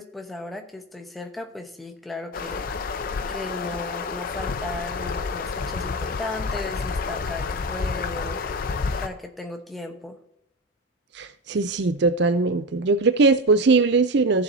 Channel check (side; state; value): both; normal; correlation 0.19